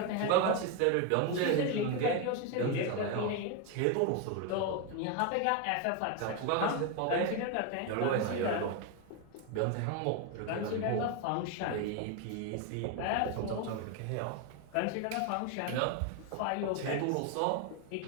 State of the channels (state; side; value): different; both; correlation 0.02